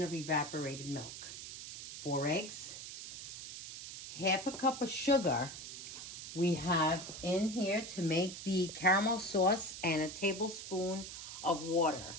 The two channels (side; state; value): right; noise; hiss, 10 dB below the sound